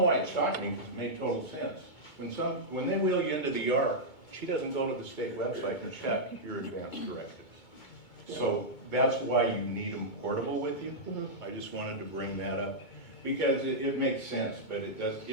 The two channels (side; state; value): right; late; 2.2 ms